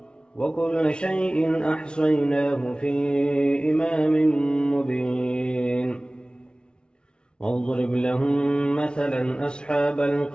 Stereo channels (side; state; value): right; late; 0.055 ms